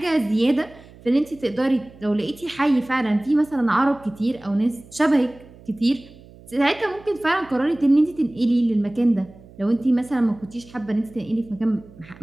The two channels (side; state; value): right; noise; hum, 22 dB below the sound